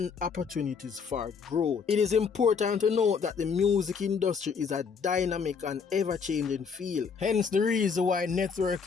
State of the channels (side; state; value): right; quieter; 5.9 dB